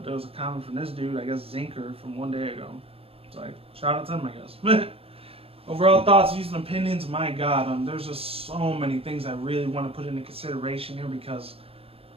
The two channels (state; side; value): late; left; 0.28 ms